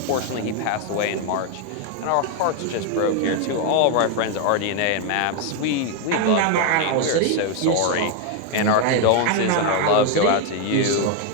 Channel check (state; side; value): different; both; correlation 0.01